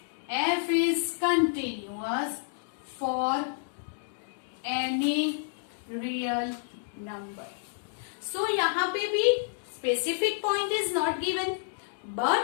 f is continuous for any real number. So, यहाँ पे भी specific point is not given,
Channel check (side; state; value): right; silent; digital silence